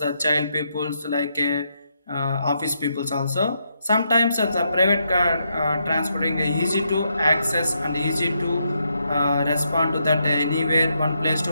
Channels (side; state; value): both; inverted; correlation -0.79